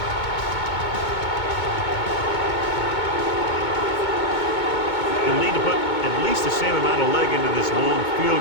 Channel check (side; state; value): right; late; 2.2 ms